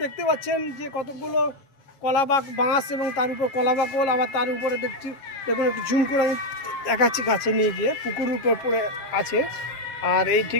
দেখতে পাচ্ছেন যে কতগুলো কলা বাঁশ এবং তার উপর কলা বাকল, আবার তার উপরে দেখছি দেখুন একটু ঝুম করে আমি দেখাচ্ছি কাছে নিয়ে গিয়ে, পুকুরের উপর পড়ে আছে। আর এই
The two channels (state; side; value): late; right; 7.4 ms